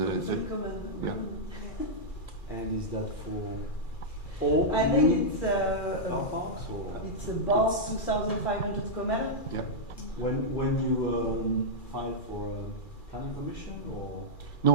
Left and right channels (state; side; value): late; right; 2.4 ms